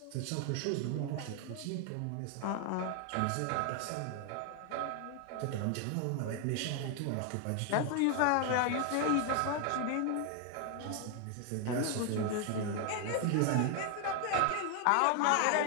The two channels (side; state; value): both; different; correlation 0.01